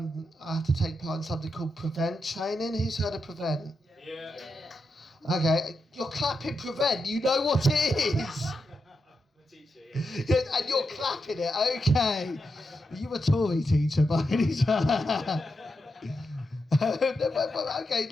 have to take part in something called Prevent training. Who's heard of Prevent? Yeah. Okay, you're clapping Prevent. You know what it is. And you're clapping it. Okay. You a Tory teacher, by any chance?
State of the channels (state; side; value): normal; both; correlation 0.86